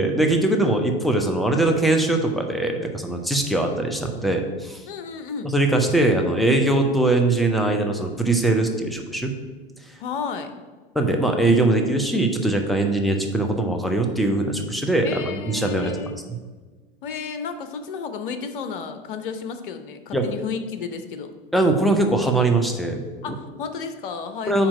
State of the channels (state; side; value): normal; both; correlation 0.51